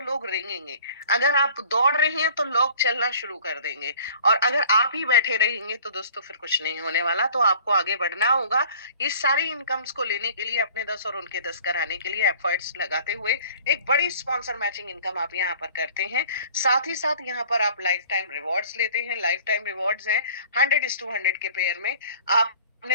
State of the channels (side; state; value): both; inverted; correlation -0.48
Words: लोग रेंगेंगे, अगर आप दौड़ रहे हैं तो लोग चलना शुरू कर देंगे, और अगर आप ही बैठे रहेंगे तो दोस्तों फिर कुछ नहीं होने वाला। तो आपको आगे बढ़ना होगा। ये सारी इनकम्स को लेने के लिए, अपने 10 और उनके 10 कराने के लिए एफर्ट्स लगाते हुए एक बड़ी स्पॉन्सर मैचिंग इनकम आप यहाँ पर करते हैं। साथ ही साथ यहाँ पर आप लाइफ टाइम रिवॉर्ड्स लेते हैं। लाइफ टाइम रिवॉर्ड्स हैं 100:100 के पेयर में।